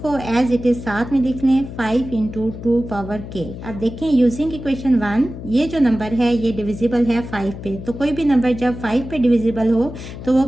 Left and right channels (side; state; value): left; noise; hum, 11 dB below the sound